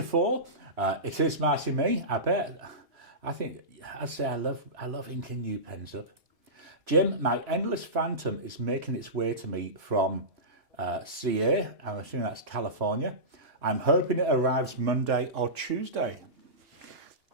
4, it is Marcy Me, I bet. I think, I'd say I love inking new pens up. Jim, my Endless Phantom is making its way to me from CA, I'm assuming that's California. I'm hoping it arrives Monday or Tuesday.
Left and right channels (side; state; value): left; late; 2.9 ms